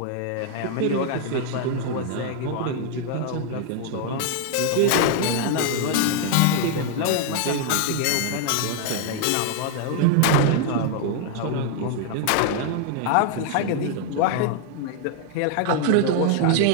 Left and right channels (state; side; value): different; both; correlation 0.00